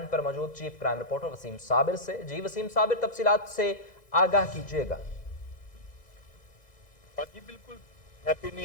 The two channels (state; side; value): late; right; 2.0 ms